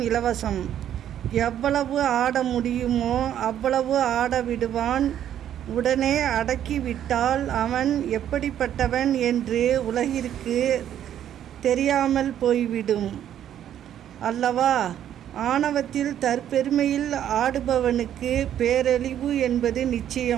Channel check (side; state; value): left; quieter; 10.6 dB